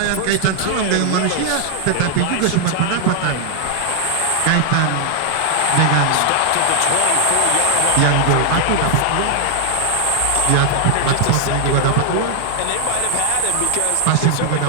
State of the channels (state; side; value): different; both; correlation 0.00